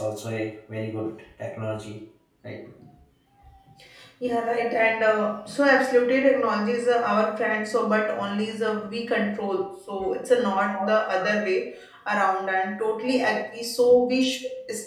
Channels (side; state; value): both; identical; correlation 1.00